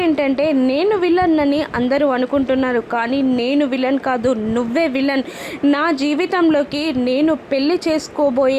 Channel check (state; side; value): identical; both; correlation 1.00